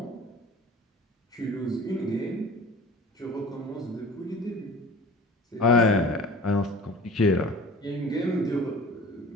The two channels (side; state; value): both; normal; correlation 0.42